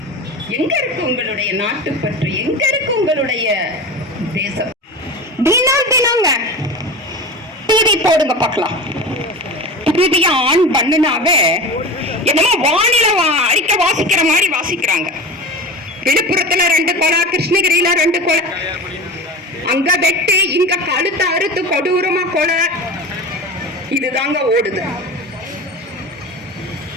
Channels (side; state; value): both; normal; correlation 0.30